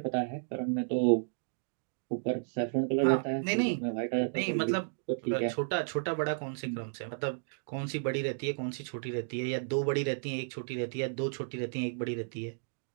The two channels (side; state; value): left; silent; digital silence